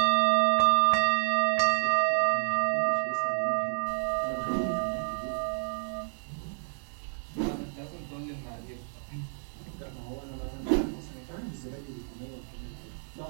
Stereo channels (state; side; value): silent; left; digital silence